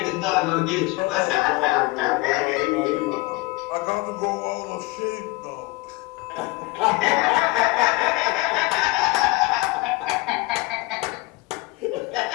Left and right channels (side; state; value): right; quieter; 22.1 dB